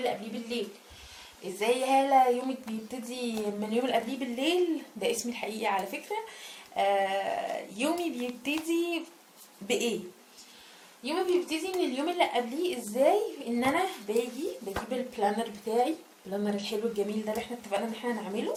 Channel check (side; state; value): both; identical; correlation 1.00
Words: قبليه بالليل. ازاي يا هالة يومك بيبتدي من اليوم اللي قبليه بالليل؟ ده اسمي الحقيقي على فكرة. يومي بيبتدي بايه؟ يومي بيبتدي من اليوم اللي قبليه. ازاي؟ ان انا بجيب البلانر بتاعي، البلانر الحلو الجميل ده اللي احنا اتفقنا ان احنا نعمله.